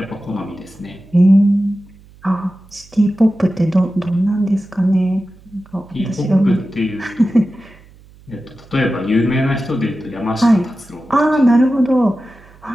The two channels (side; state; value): right; noise; hum, 25 dB below the sound